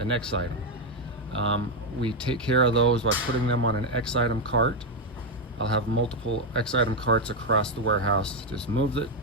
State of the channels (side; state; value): both; normal; correlation 0.05